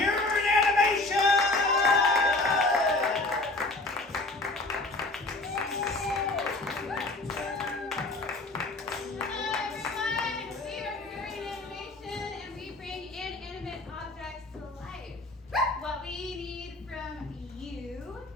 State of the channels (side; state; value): right; quieter; 3.0 dB